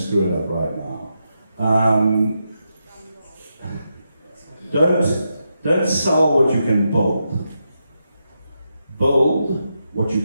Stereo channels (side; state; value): both; inverted; correlation -0.85